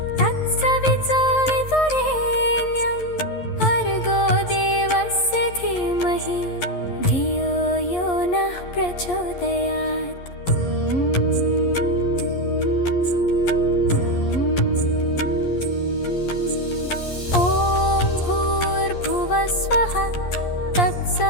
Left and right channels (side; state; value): right; late; 11 ms